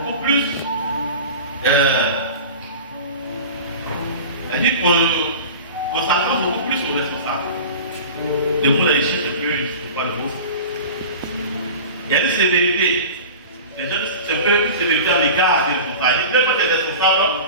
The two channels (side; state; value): both; inverted; correlation -0.35